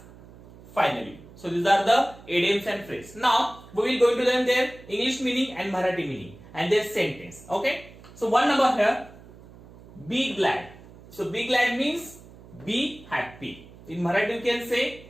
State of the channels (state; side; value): noise; right; hum, 21 dB below the sound